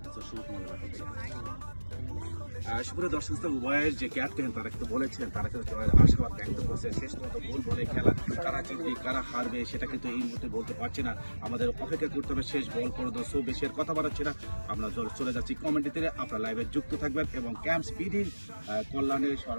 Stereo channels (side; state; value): both; inverted; correlation -1.00